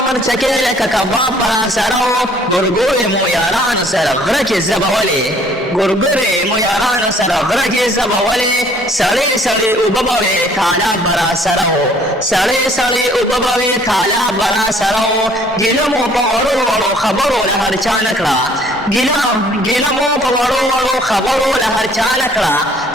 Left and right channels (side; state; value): both; normal; correlation 0.58